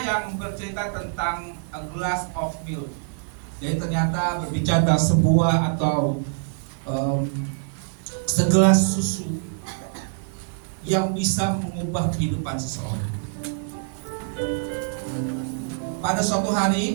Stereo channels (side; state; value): left; silent; digital silence